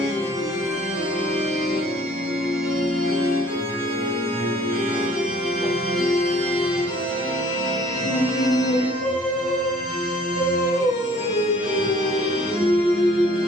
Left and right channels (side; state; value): both; normal; correlation 0.56